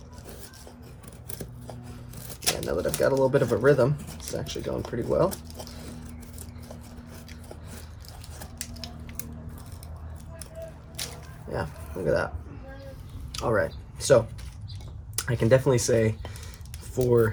Yeah, now that I've got a little bit of a rhythm, it's actually going pretty well. Yeah, look at that. All right, so I can definitely say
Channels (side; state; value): both; identical; correlation 1.00